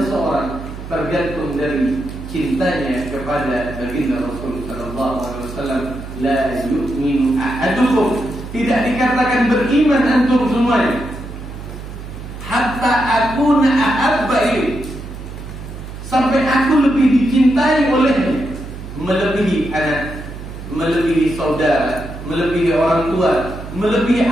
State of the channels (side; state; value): right; noise; hum, 11 dB below the sound